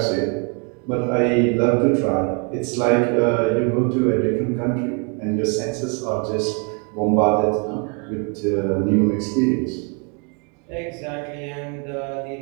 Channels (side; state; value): left; quieter; 35.8 dB